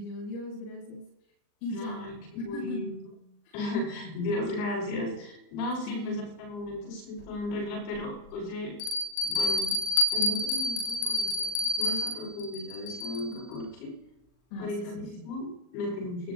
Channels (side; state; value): right; late; 39 ms